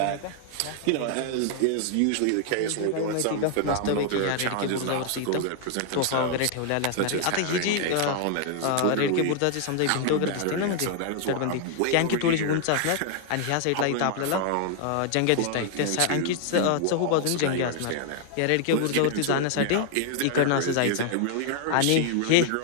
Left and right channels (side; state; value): both; different; correlation 0.00